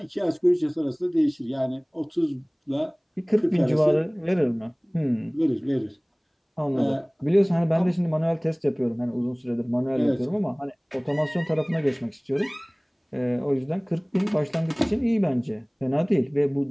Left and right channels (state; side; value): identical; both; correlation 1.00